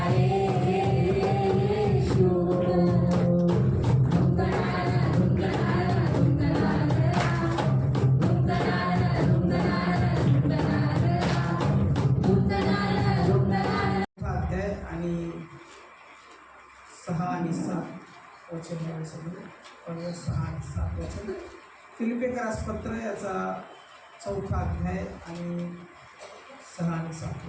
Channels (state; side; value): identical; both; correlation 1.00